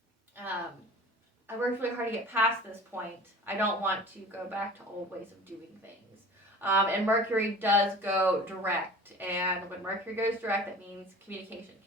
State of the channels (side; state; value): both; normal; correlation 0.41